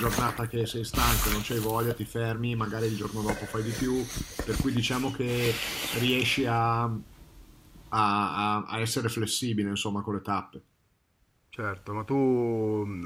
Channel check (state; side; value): identical; both; correlation 1.00